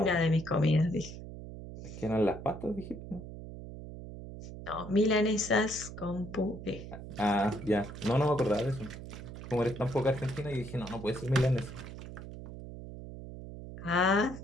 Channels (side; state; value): right; noise; hum, 11 dB below the sound